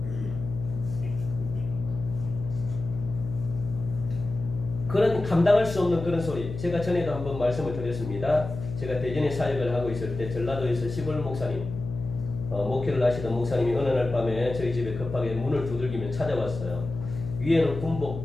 그런 감당할 수 없는 그런 소리. 제가 전에도 한번 말씀을 드렸습니다. 제가 대전에 사역을 하고 있을 때 전라도에서 시골 목사님, 목회를 하시던 목사님이 어느 날 밤에 저희 집에 급하게 문을 두들기며 찾아왔어요. 위에는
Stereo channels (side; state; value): left; noise; hum, 8 dB below the sound